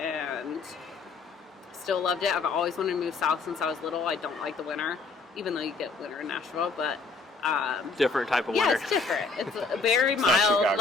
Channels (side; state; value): right; quieter; 4.2 dB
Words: still loved it. I've always wanted to move south since I was little. I don't like the winter, even though you get winter in Nashville, but different type of winter. Yeah, it's different. It's very mild.